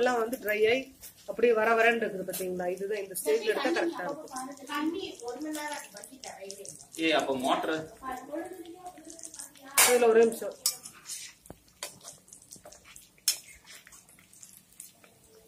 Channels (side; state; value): both; identical; correlation 1.00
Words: வந்து ட்ரை ஆகி அப்படியே வரன்னு இருக்குது பாத்தீங்களா. இதுதான் இந்த ஸ்டேஜ்ல எடுத்தா கரெக்டா இருக்கும். அப்ப மோட்டர் அதுல ஒரு நிமிஷம்.